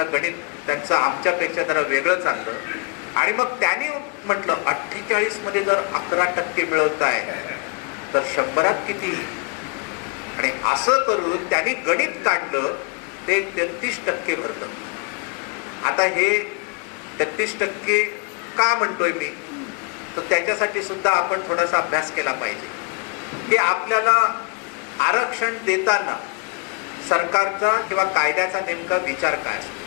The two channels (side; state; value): right; quieter; 34.1 dB